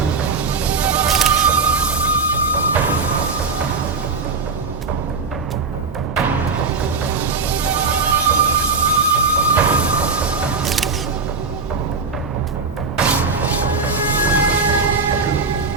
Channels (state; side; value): quieter; left; 4.5 dB